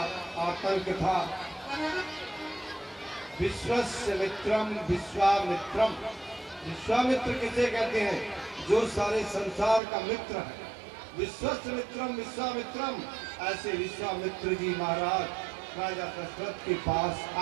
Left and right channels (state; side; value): drops out; left; at 9.8 s